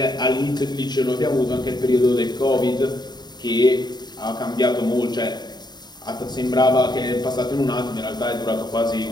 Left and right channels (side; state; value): right; late; 0.20 ms